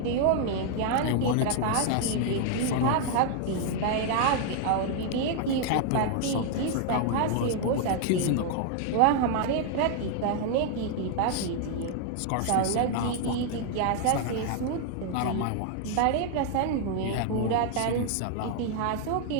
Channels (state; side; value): different; both; correlation 0.00